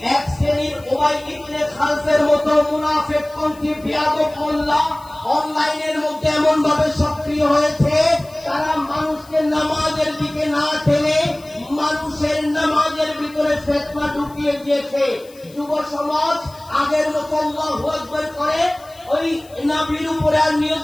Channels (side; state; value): left; noise; hiss, 25 dB below the sound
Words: এক শ্রেণীর উমাই ইবনে খালফের মতো মুনাফিকপন্থী বিয়াদব মোল্লা অনলাইনের মধ্যে এমন ভাবে সক্রিয় হয়েছে, তারা মানুষকে নামাজের দিকে না টেনে মানুষের নামাজের ভিতরে ফিতনা ঢুকিয়ে দিয়েছে। যুব সমাজ আগের মতো আল্লাহু আকবার করে ওই নবীর উপরে আর নিয়ত